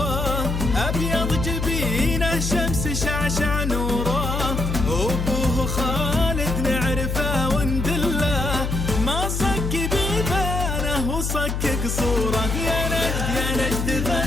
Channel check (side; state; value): left; noise; hum, 2 dB below the sound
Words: أبيض جبينه شمس شعشع نوره. وأبوه خالد نعرفه وندله، ما صك بيبانه وصك قصوره. يا نجد